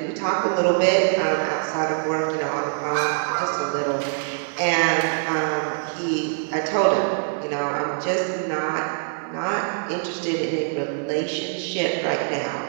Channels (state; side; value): silent; left; 63 dB below the other